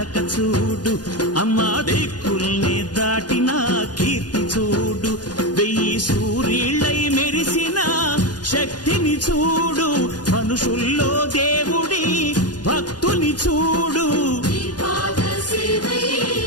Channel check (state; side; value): late; right; 0.69 ms